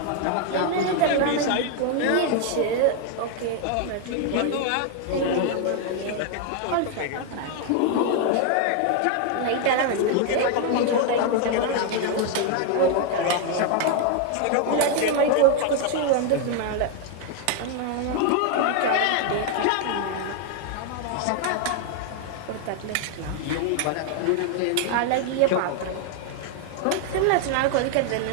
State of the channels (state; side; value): different; both; correlation 0.00